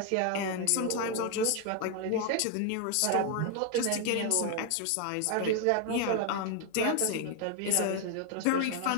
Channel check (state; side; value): different; both; correlation 0.01